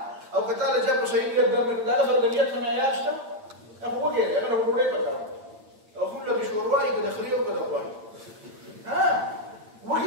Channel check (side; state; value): left; late; 8.8 ms